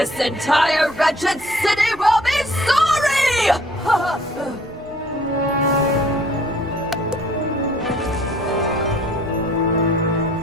entire wretched city will be sorry!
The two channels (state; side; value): normal; both; correlation 0.57